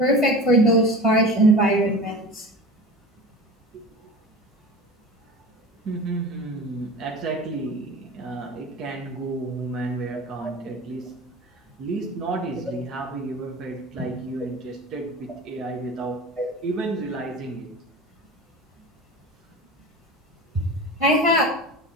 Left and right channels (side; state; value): both; normal; correlation 0.34